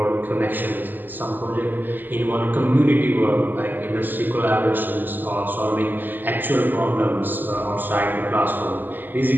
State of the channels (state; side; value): late; left; 0.089 ms